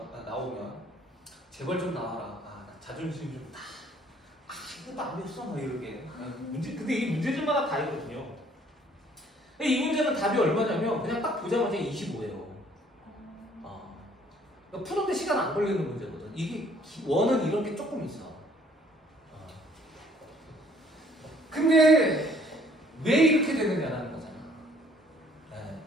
나오면. 제발 좀 나와라. 나 자존심 좀 다. 이것도 안 됐어. 막 이렇게. 근데 이 문제집마다 다 있거든요. 이 문제는 답이 얼마냐면 그냥 딱 보자마자 25예요. 푸는데 시간 안 걸리는 문제거든. 이게 원은 이런 게 조금 있어. 근데 왜 이렇게 되느냐라는 거잖아. 네.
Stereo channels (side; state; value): both; normal; correlation 0.60